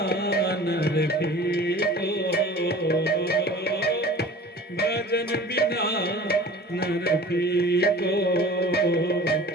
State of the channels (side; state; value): both; normal; correlation 0.42